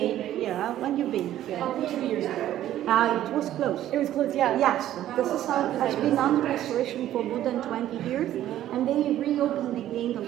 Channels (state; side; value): quieter; left; 12.6 dB